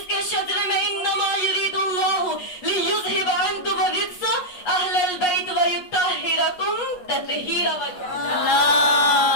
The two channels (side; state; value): right; late; 8.3 ms